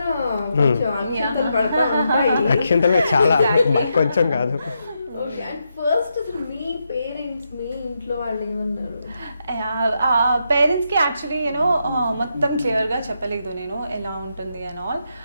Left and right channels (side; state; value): both; inverted; correlation -0.83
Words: కొంచెం పడతా ఉంటాయి చాలా కొంచెం కాదు. ఓకే, అండ్ ఫస్ట్ అసలు మీ పేరెంట్స్ మీ ఇంట్లో వాళ్ళు ఏమన్నారు? పేరెంట్స్కి యాక్చువల్లీ మొత్తం క్లియర్గా చెప్పలేదు నేను ఎలా ఉంటుంది and all.